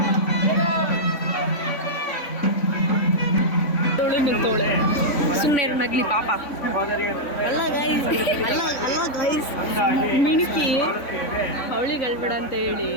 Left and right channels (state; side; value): late; right; 3.5 ms